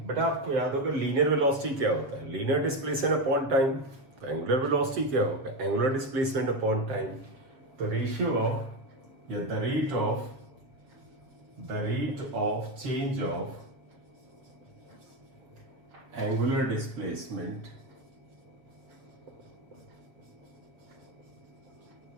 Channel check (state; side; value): late; left; 7.3 ms